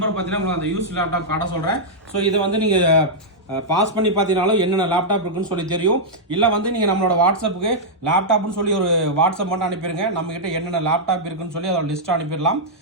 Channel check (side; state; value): both; normal; correlation -0.07